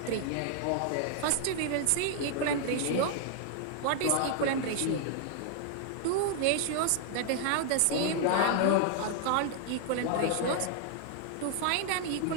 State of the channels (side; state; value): both; different; correlation 0.00